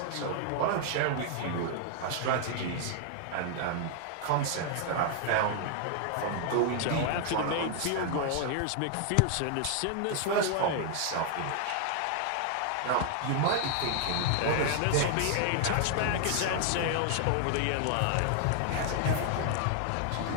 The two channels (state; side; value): different; both; correlation 0.00